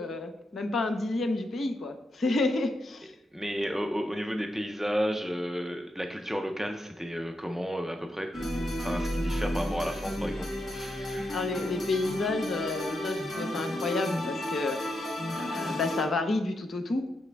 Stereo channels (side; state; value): both; normal; correlation 0.84